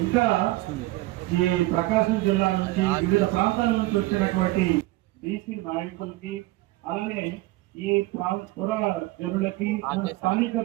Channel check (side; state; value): left; quieter; 19.0 dB